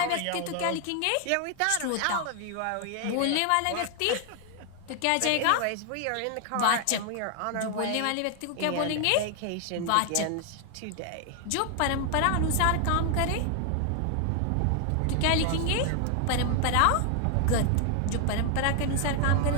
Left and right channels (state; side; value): different; both; correlation 0.00